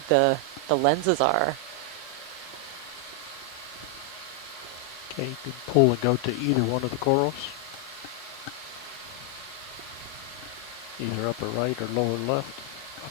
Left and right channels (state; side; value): normal; both; correlation 0.00